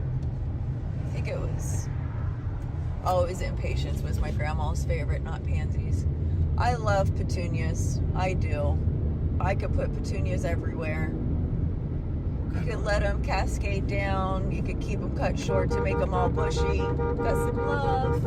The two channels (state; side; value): identical; both; correlation 1.00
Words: I think it was impatiens was my grandma's favorite, not pansies. I love petunias. I do. I could put petunias everywhere. You could let them cascade down. You could keep them cut short to make them all bushy. Got some love.